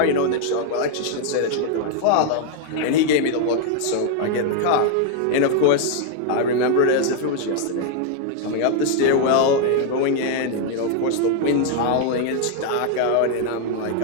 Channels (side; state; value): both; different; correlation 0.00